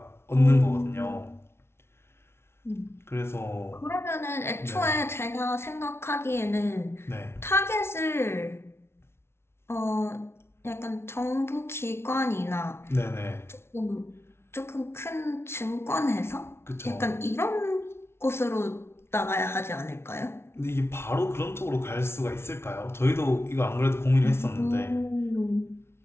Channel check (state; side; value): late; right; 0.12 ms